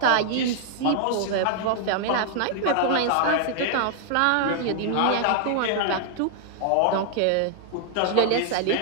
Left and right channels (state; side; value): different; both; correlation -0.01